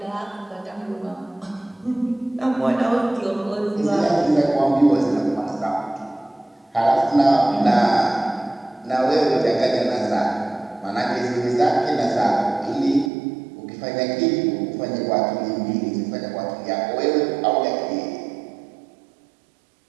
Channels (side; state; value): left; drops out; at 13.1 s